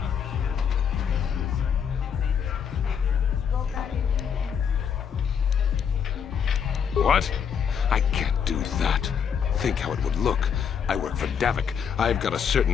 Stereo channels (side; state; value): right; quieter; 7.4 dB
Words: What? I can't do that. Think how it would look. I work for Davik. I've got a